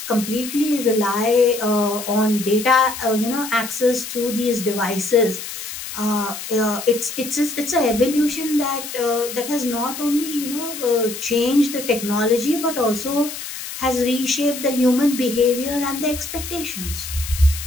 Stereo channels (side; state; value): left; noise; hiss, 9 dB below the sound